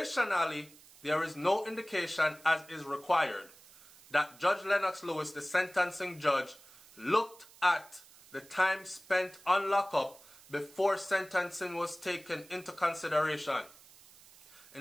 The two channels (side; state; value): right; noise; hiss, 23 dB below the sound